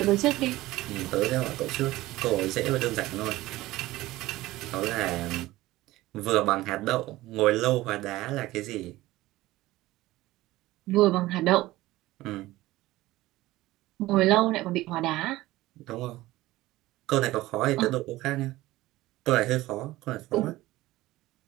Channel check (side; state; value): left; quieter; 17.5 dB